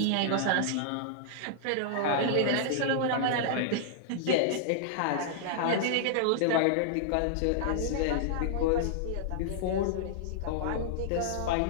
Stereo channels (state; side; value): different; both; correlation -0.01